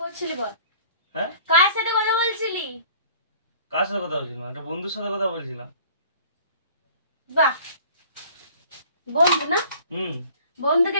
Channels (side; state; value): both; inverted; correlation -0.49